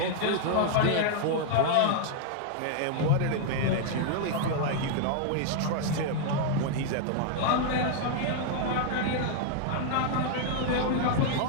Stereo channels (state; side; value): different; both; correlation 0.00